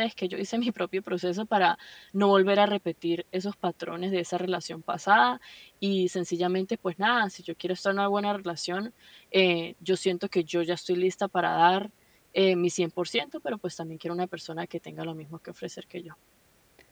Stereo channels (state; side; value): identical; both; correlation 1.00